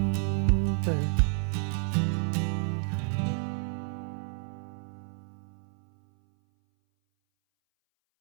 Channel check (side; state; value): left; silent; 58 dB below the other